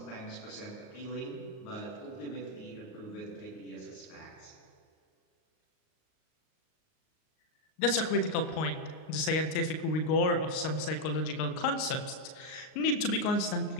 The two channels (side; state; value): right; late; 38 ms